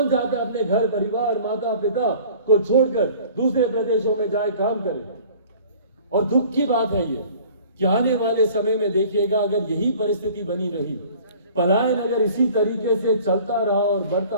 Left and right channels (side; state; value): both; inverted; correlation -0.49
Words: चाहता है अपने घर परिवार, माता पिता को छोड़कर दूसरे प्रदेशों में जाए काम करे? और दुख की बात है ये कि आने वाले समय में देखिएगा, अगर यही परिस्थिति बनी रही, पलायन अगर इसी तरीके से चलता रहा और बढ़ता